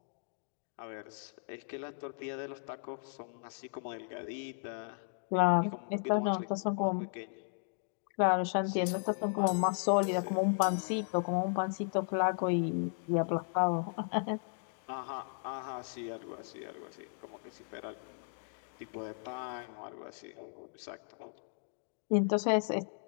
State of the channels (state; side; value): silent; right; digital silence